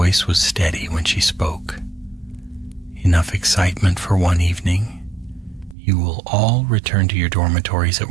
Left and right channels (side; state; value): left; drops out; at 5.8 s